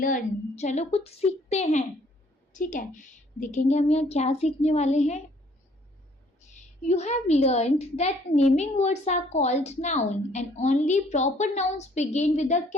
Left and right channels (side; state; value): both; normal; correlation 0.61